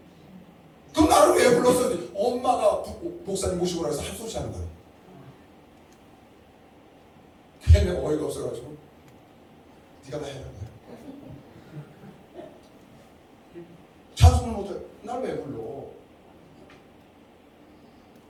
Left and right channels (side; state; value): both; identical; correlation 1.00